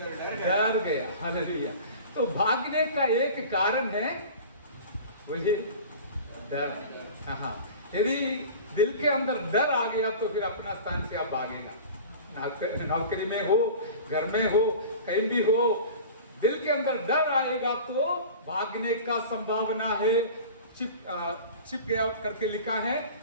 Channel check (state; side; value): inverted; both; correlation -0.37